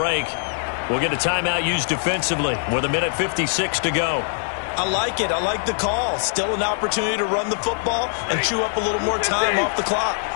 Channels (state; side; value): silent; right; 58 dB below the other